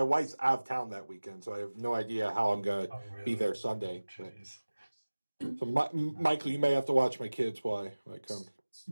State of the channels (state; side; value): inverted; both; correlation -1.00